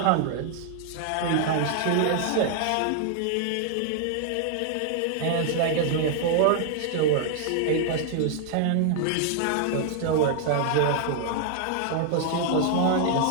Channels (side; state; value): both; different; correlation 0.00